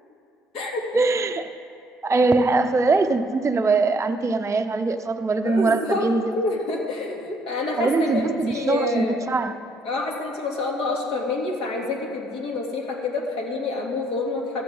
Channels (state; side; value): normal; both; correlation 0.68